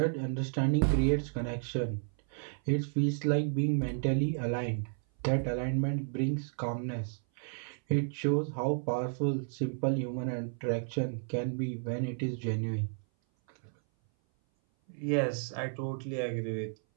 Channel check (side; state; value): left; silent; 56 dB below the other